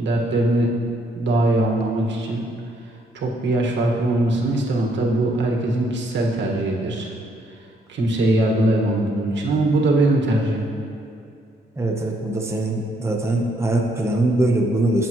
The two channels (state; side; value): normal; both; correlation 0.71